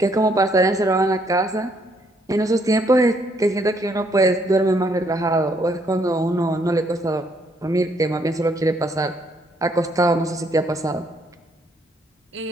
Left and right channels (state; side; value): normal; both; correlation 0.70